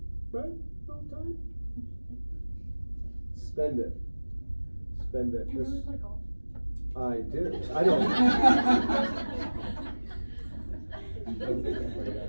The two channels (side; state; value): both; inverted; correlation -1.00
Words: right? A little time. Spend it. Spend it. Do you really play golf? I do. I don't.